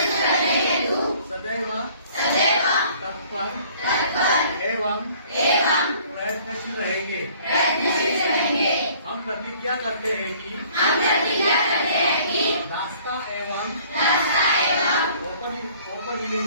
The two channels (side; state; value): both; inverted; correlation -0.55